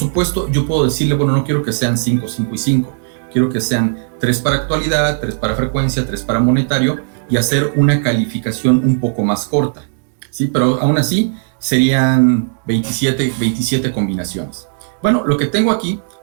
yo puedo decirle, bueno, no quiero que sean 5, 5 y 5. Quiero que sean 3 para actualidad, 3 para frecuencia, 3 para monetario y hacer una calificación un poco más corta, ¿sí? Pero aún así serían 27 combinaciones. Bueno, lo que tengo aquí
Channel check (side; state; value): left; silent; digital silence